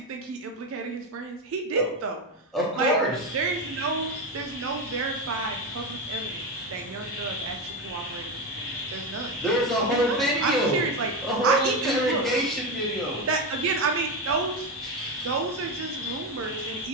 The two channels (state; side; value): normal; both; correlation 0.14